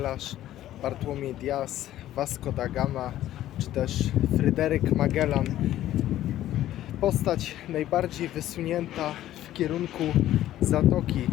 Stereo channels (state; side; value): quieter; right; 13.3 dB